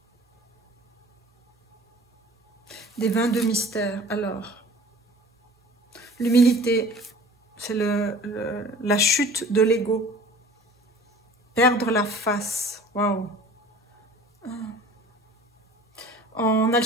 Des 22 mystères. Alors, l'humilité, c'est la chute de l'ego. Perdre la face. Waouh. En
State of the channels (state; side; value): normal; both; correlation 0.45